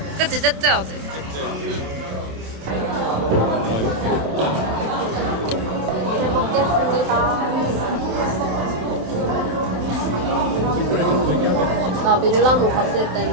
그치 째째하지. 잘 먹겠습니다. 나 밀라노 갔을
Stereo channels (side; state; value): left; late; 27 ms